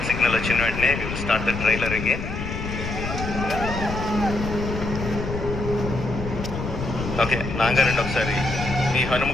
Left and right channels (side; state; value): left; noise; rumble, 5 dB below the sound